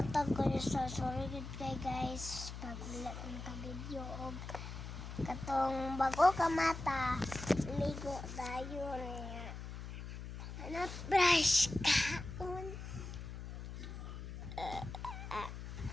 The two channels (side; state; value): left; noise; hum, 8 dB below the sound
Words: kayo sa sorry good kay guys pag wala ka video og katong bago ka mata ligo dayon niya. Ano brush kaon?